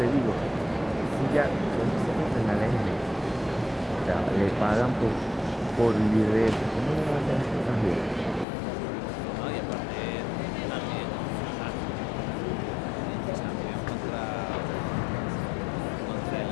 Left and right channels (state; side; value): drops out; right; at 8.5 s